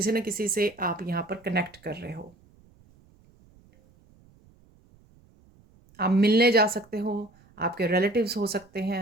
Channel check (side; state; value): right; noise; rumble, 29 dB below the sound